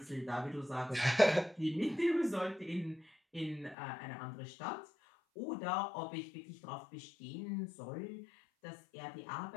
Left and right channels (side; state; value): right; drops out; at 3.8 s